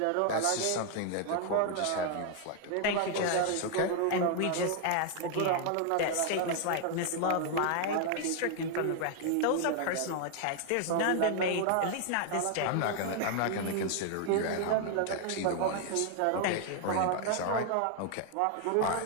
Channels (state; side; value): different; both; correlation 0.00